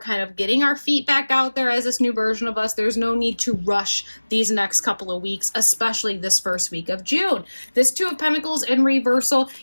of getting our feet back out there as this new version of us. There's no need to rush these next couple of weeks, especially this first week of June. This Two of Pentacles in reversal,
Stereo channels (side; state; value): both; inverted; correlation -1.00